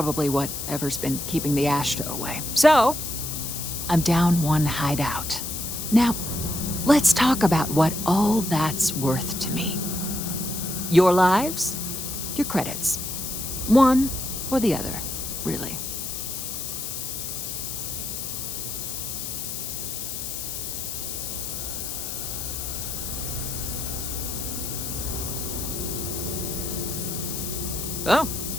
whatever's been keeping the Ashta away. So, I'm down one hideout. Now, let's talk about what all that's worth to me. Your lives, your credits. One or the other, really. Oh.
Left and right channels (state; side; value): noise; left; hiss, 5 dB below the sound